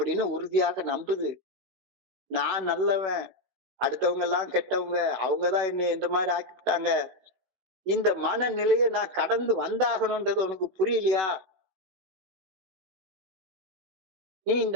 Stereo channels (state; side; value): late; left; 16 ms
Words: உறுதியாக நம்புது. நான் நல்லவன், அடுத்தவங்க எல்லாம் கெட்டவங்க, அவங்கதான் என்னை இந்த மாதிரி ஆக்கிவிட்டாங்க. இந்த மனநிலையை நான் கடந்து வந்தாகணும்ன்றது உனக்கு புரியலையா? நீ